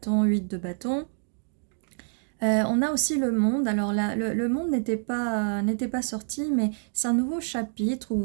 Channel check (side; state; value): left; silent; 55 dB below the other